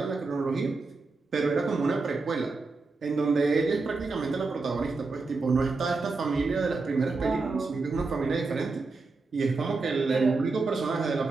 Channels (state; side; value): quieter; left; 3.9 dB